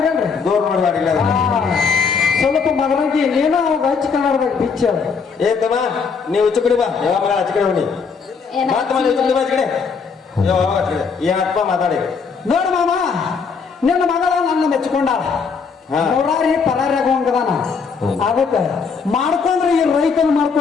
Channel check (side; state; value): right; quieter; 5.6 dB